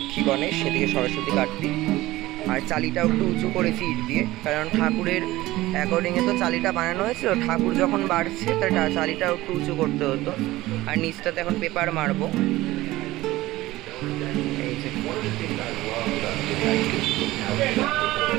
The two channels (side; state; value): left; quieter; 17.6 dB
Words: গণেশ, সেদিকে সরস্বতী কার্তিক। আর চালিটাও একটু উঁচু করেছি ইট দিয়ে, কারণ ঠাকুরের অ্যাকর্ডিংয়ে তো চালিটা বানানো হয়েছিল। ঠাকুর যখন বাড়ছে তার চালিটাও একটু উঁচু করতে হতো। আর নিচটাতে এখন পেপার মারবো।